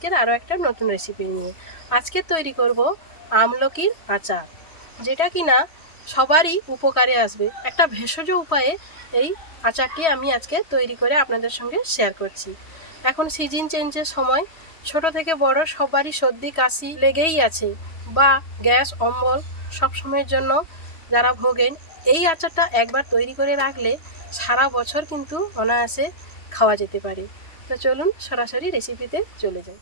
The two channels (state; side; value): late; right; 3.1 ms